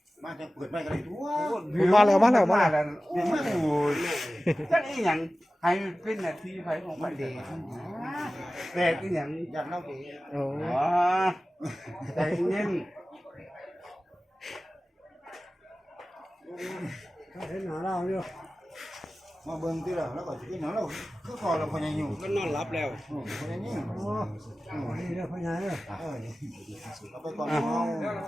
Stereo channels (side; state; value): both; normal; correlation 0.96